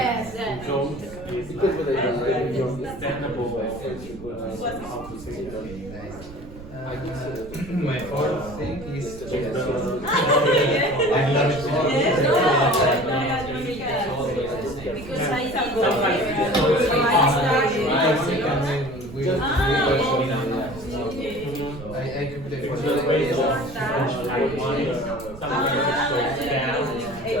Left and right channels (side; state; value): right; noise; rumble, 16 dB below the sound